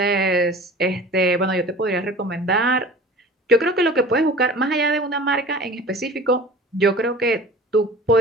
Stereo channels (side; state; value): both; normal; correlation 0.41